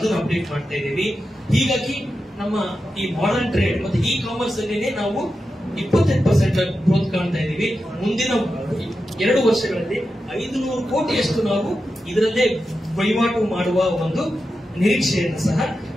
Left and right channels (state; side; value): normal; both; correlation 0.90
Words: ಅಪ್ಡೇಟ್ ಮಾಡ್ತಾ ಇದ್ದೀವಿ. ಹೀಗಾಗಿ ನಮ್ಮ ಈ ಮಾಡರ್ನ್ ಟ್ರೇಡ್ ಮತ್ತೆ ಇ ಕಾಮರ್ಸ್ ಅಲ್ಲಿ ನಾವು 28% ಗ್ರೋತ್ ಕಾಣ್ತಾ ಇದ್ದೀವಿ. ಮುಂದಿನ 2 ವರ್ಷಗಳಲ್ಲಿ 500 ಕೋಟಿಯಷ್ಟು ನಾವು ಇದರಲ್ಲೇ ವಹಿವಾಟು ಮಾಡುವ ಒಂದು ನಿರೀಕ್ಷೆಯನ್ನು ಸಹ